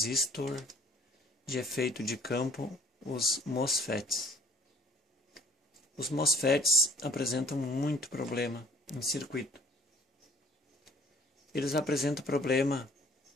de efeito de campo, os MOSFETs. Os MOSFETs apresentam muito problema em circuito. Eles apresentam problema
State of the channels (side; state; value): both; normal; correlation 0.55